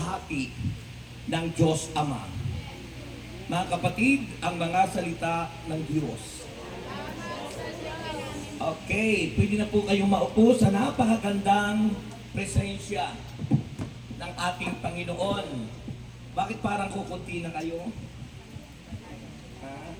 ng Diyos Ama. Mga kapatid, ang mga salita ng Diyos. Okay, pwede na po kayong maupo sa napakagandang presensya ng ating Panginoon. Bakit parang kukunti na kayo? Ha?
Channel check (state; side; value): identical; both; correlation 1.00